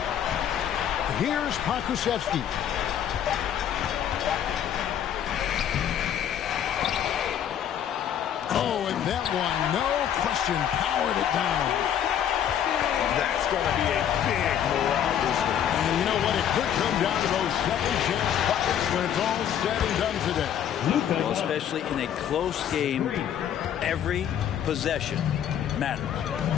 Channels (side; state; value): right; quieter; 9.7 dB